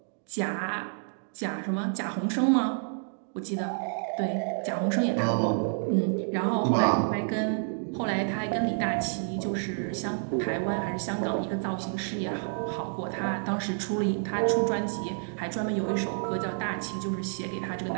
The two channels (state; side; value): silent; left; 58 dB below the other